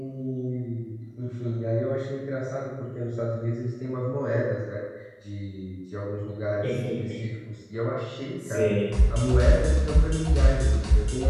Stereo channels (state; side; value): identical; both; correlation 1.00